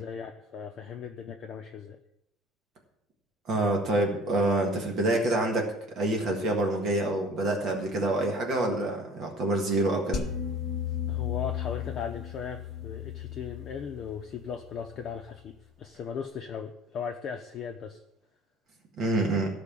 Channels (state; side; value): normal; both; correlation 0.46